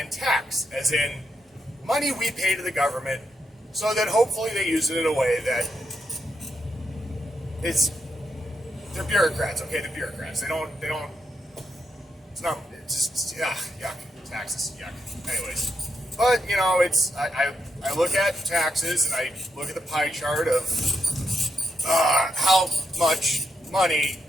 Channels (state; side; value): normal; both; correlation 0.81